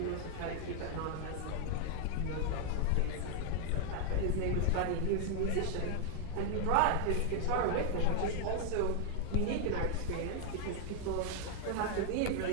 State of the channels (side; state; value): both; different; correlation 0.00